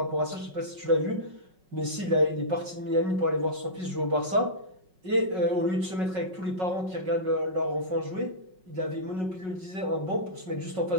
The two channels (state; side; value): late; left; 5.4 ms